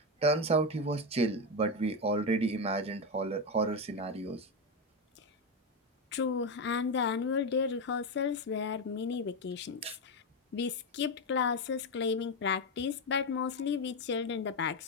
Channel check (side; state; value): both; normal; correlation 0.10